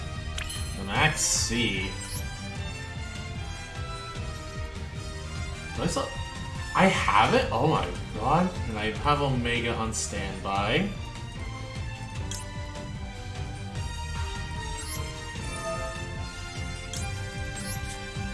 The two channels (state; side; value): identical; both; correlation 1.00